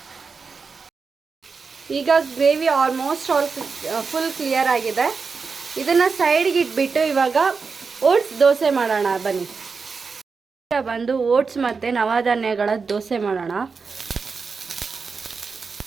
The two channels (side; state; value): left; quieter; 5.0 dB